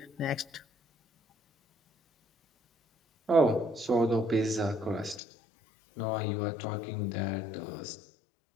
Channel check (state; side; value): drops out; right; at 5.2 s